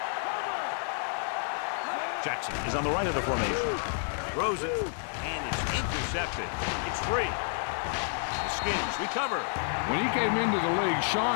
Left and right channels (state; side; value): silent; right; digital silence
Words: Jackson is on the right of the formation. Throws it, and it's intercepted. It's free. The Skins recover. When he came into the league,